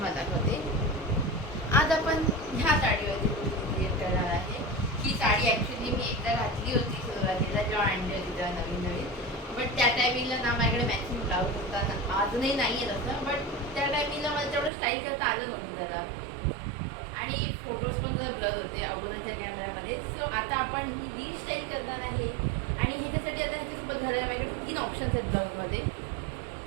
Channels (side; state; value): left; drops out; at 14.7 s